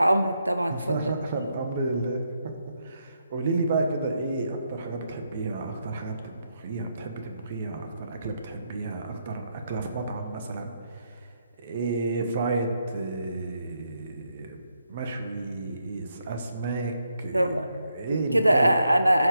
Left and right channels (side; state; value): both; inverted; correlation -0.80